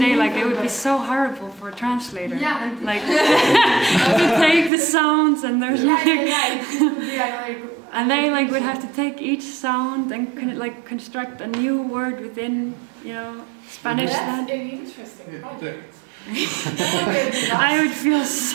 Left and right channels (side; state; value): left; drops out; at 4.7 s